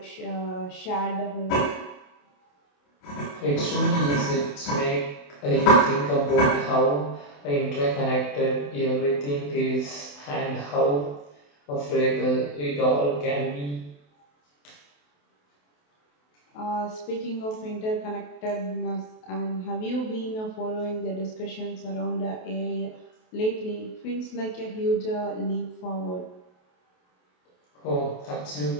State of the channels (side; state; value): right; late; 28 ms